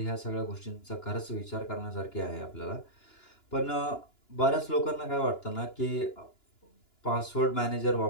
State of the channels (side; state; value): right; late; 2.9 ms